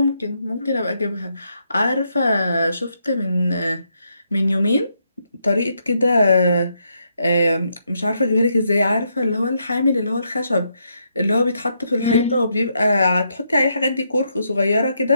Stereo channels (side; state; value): both; inverted; correlation -0.78